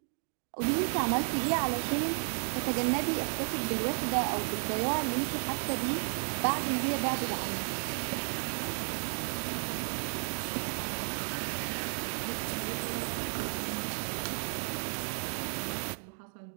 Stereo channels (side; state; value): left; silent; digital silence